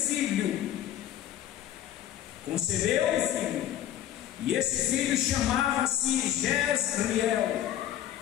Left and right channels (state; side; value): quieter; right; 11.7 dB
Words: concebeu um filho, e esse filho chamava-se Jezreel.